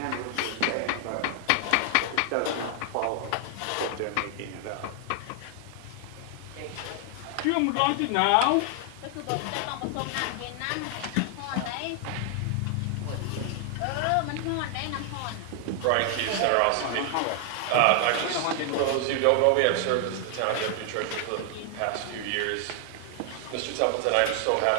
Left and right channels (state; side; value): different; both; correlation 0.00